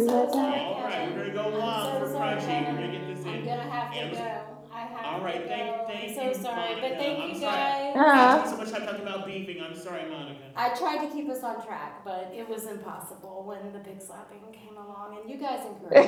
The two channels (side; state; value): both; identical; correlation 1.00